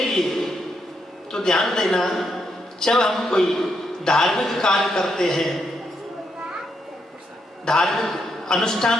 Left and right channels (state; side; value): normal; both; correlation 0.79